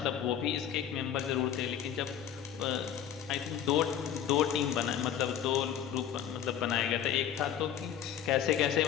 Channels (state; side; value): quieter; right; 9.6 dB